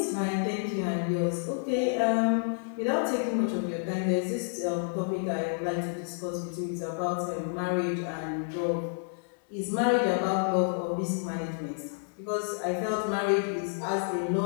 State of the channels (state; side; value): silent; right; 58 dB below the other